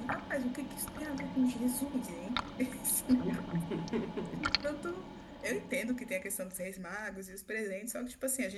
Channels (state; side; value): identical; both; correlation 1.00